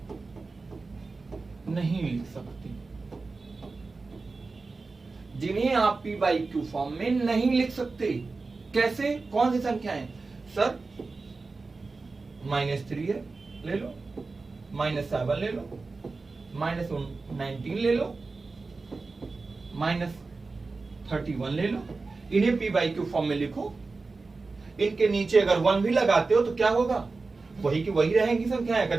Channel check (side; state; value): left; quieter; 3.9 dB